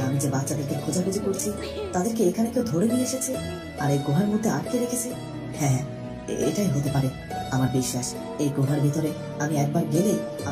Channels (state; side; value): identical; both; correlation 1.00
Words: আমি যে বাচ্চাদেরকে খোঁজাখুঁজি করছি তাদেরকে এখানে কেউ ধরে নিয়ে এসেছে আর এই গুহার মধ্যে আটকে রেখেছে? হ্যাঁ, এটাই হতে পারে। আমার বিশ্বাস এই গুহার ভিতরে আমি একবার গেলে